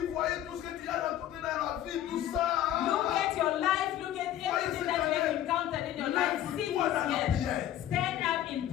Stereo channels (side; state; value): right; quieter; 11.9 dB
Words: voyez tout ce que tu as rencontré dans la vie, tout ça. Look at your life, look at everything that you have encountered in your life. See this year. Stand up in